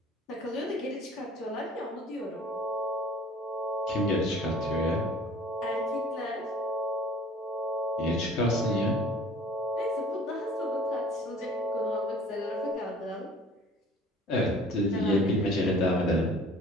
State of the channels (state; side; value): normal; both; correlation 0.49